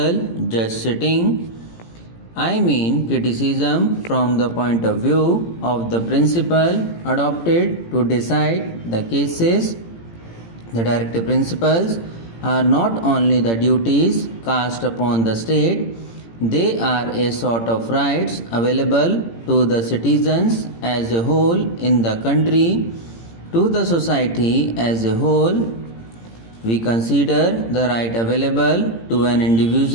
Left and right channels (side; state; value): right; late; 18 ms